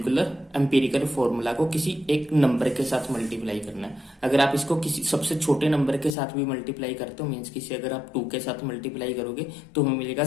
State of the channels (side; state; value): right; drops out; at 6.2 s